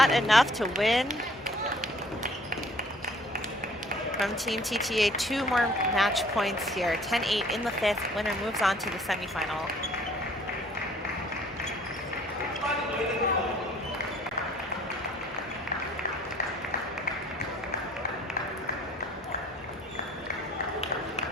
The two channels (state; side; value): normal; both; correlation 0.56